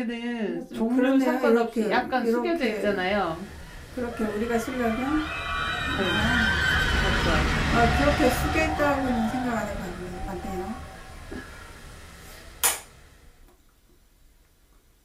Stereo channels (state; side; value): identical; both; correlation 1.00